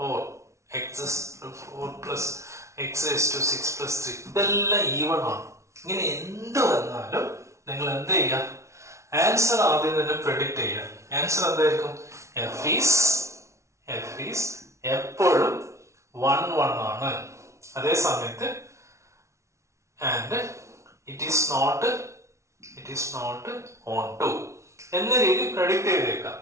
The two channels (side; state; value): left; late; 0.14 ms